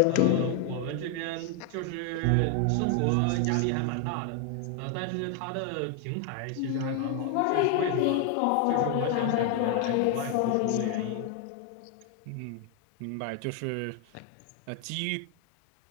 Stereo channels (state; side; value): different; both; correlation 0.00